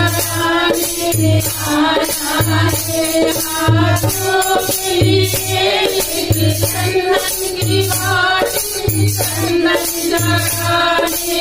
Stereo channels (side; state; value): left; noise; rumble, 19 dB below the sound